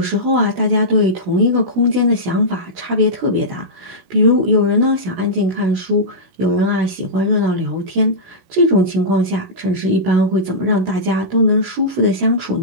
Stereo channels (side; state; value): left; late; 16 ms